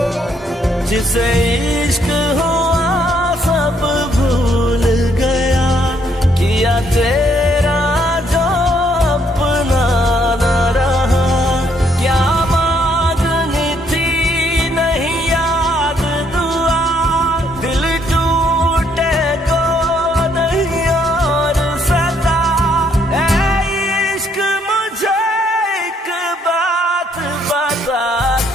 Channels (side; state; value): both; normal; correlation 0.70